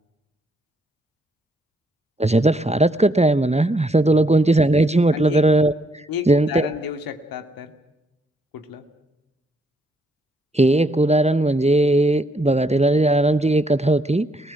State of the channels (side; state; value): both; normal; correlation 0.71